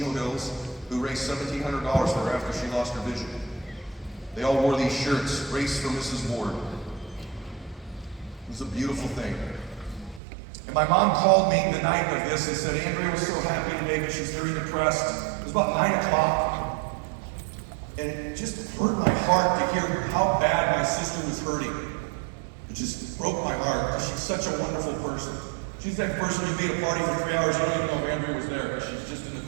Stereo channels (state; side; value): drops out; left; at 10.2 s